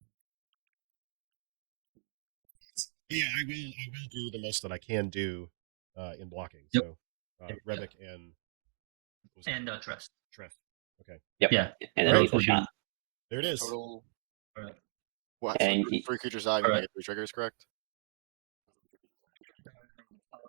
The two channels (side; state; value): left; silent; digital silence